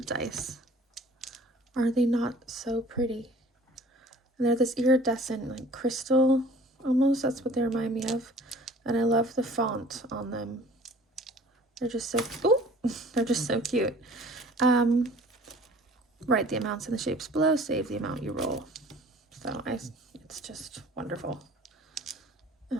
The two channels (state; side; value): normal; both; correlation 0.49